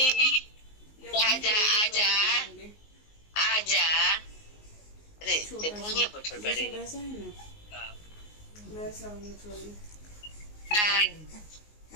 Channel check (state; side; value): late; right; 19 ms